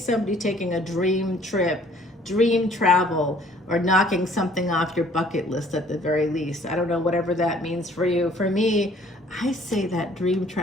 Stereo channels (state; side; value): normal; both; correlation 0.57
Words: taking a dream trip, dream travel, or knocking something off your bucket list at the very least. I don't know, whatever that means for you. For me, I say that dream